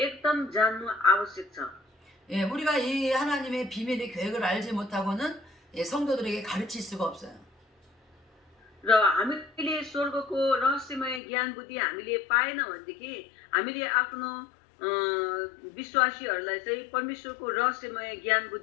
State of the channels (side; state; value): right; drops out; at 11.2 s